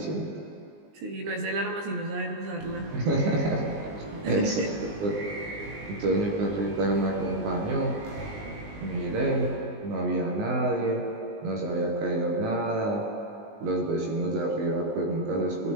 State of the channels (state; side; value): late; left; 19 ms